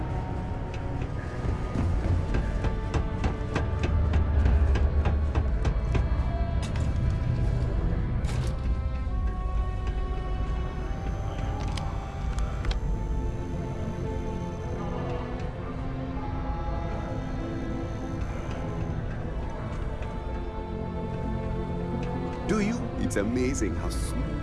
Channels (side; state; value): both; identical; correlation 1.00